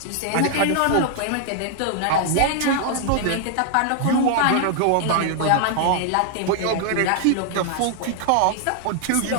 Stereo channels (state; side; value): different; both; correlation 0.00